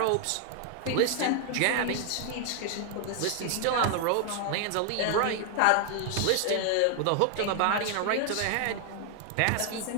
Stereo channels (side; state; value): both; different; correlation 0.00